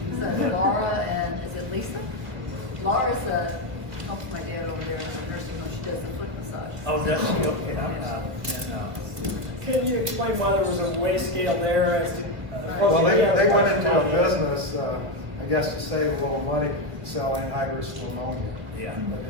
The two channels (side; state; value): left; late; 1.8 ms